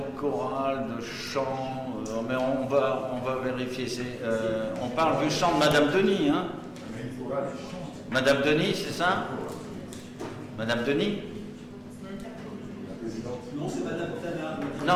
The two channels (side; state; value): both; identical; correlation 1.00